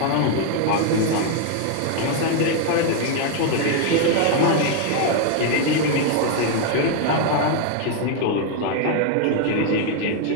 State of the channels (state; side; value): different; both; correlation 0.01